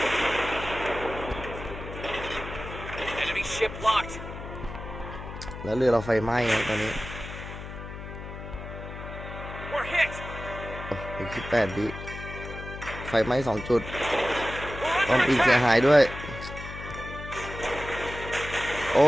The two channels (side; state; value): left; noise; hum, 10 dB below the sound